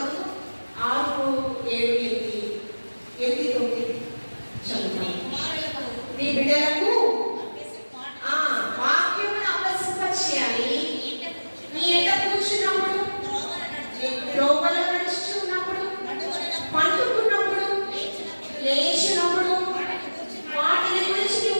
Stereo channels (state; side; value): inverted; both; correlation -1.00